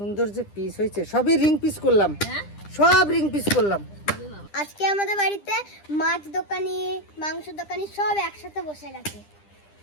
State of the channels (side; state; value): right; late; 10 ms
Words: যে পিস হয়েছে, সবই রিং পিস করলাম, সব রিং পিস করলাম। আজকে আমাদের বাড়িতে মাছ দোকানি, মাংস দোকানি সব একসাথে বসে গেছে।